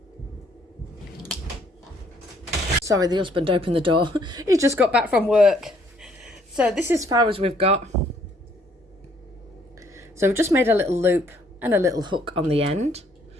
Sorry, the husband opened the door. He just got back from work. So this is as far as we've got. So we've just made a little loop and a little hook on the end.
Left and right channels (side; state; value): both; normal; correlation 0.65